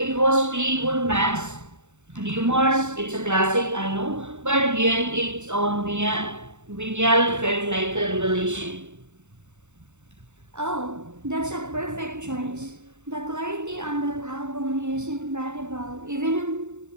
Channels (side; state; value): left; late; 0.84 ms